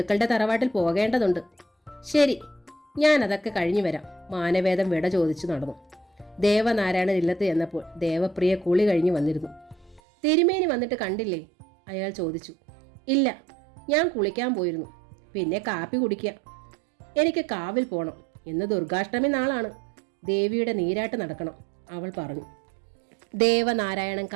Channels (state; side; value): drops out; left; at 10.0 s